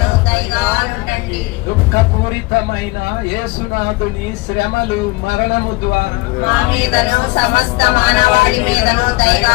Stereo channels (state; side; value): quieter; right; 23.2 dB